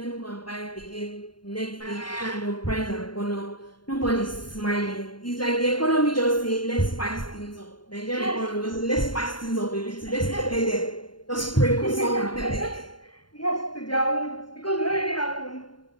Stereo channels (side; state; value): right; late; 0.71 ms